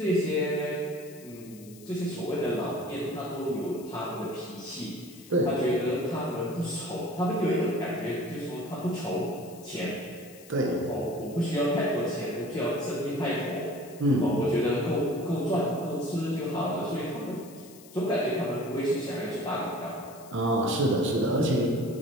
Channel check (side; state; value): left; noise; hiss, 21 dB below the sound